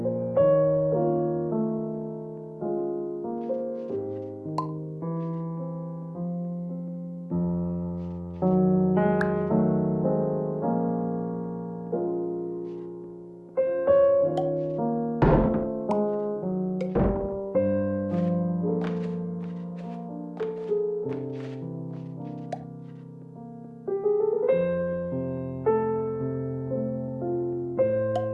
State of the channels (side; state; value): both; identical; correlation 1.00